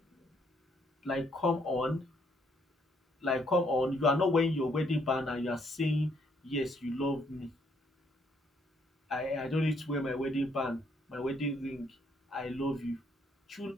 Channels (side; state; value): both; normal; correlation 0.69